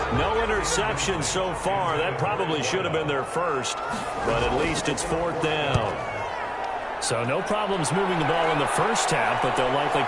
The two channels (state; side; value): identical; both; correlation 1.00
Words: No interception so far. That probably should have been their first. But at least it's 4th down. So no problems moving the ball in the first half, but they'll likely